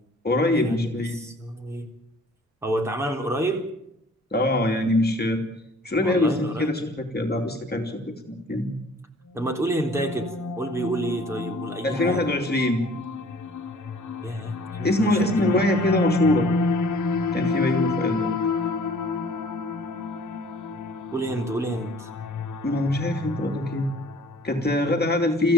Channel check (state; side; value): normal; both; correlation 0.53